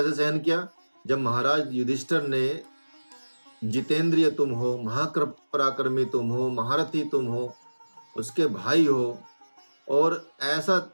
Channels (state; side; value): inverted; both; correlation -1.00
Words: सहन किया, जब महाराज युधिष्ठिर ने जितेंद्रिय तुम हो, महापराक्रमी तुम हो, महारथी तुम हो, उसके भाई हो, और